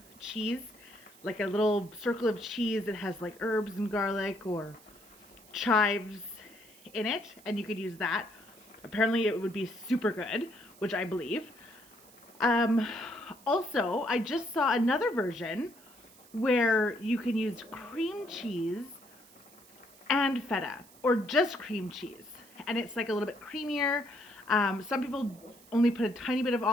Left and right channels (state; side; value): noise; right; hiss, 24 dB below the sound